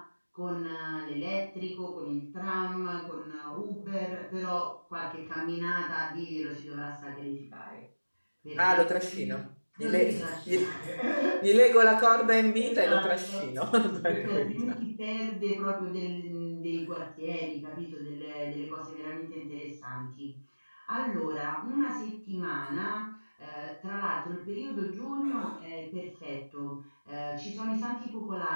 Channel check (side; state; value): both; inverted; correlation -1.00